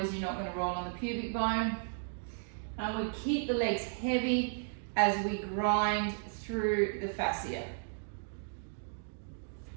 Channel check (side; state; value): left; silent; digital silence